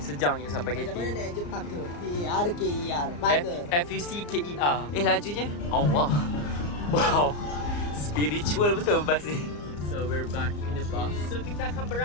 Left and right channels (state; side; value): late; right; 34 ms